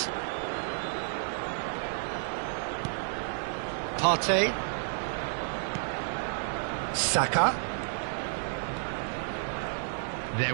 Partey. Saka. There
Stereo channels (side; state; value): left; silent; digital silence